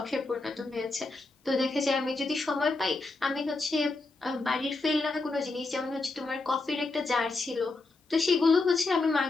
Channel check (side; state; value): right; quieter; 3.4 dB